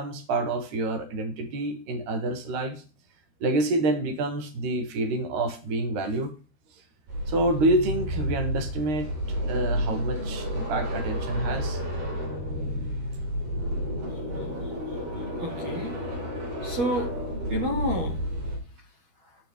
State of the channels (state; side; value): late; left; 13 ms